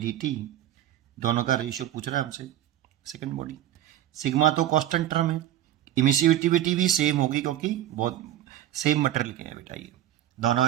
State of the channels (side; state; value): left; quieter; 12.3 dB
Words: t दोनों का रेशियो पूछ रहा है हमसे सेकंड बॉडी। सिग्मा तो कांस्टेंट टर्म है, इमिसिविटी भी सेम होगी क्योंकि बहुत सेम मटेरियल के हैं बेटा, ये